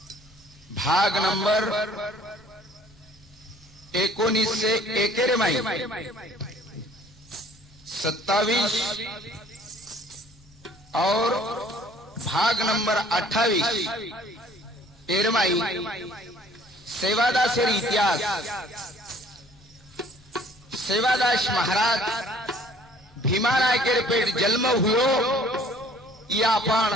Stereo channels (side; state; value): both; normal; correlation 0.55